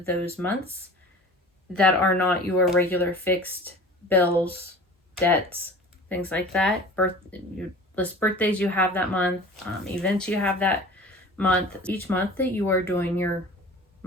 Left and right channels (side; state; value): both; normal; correlation 0.40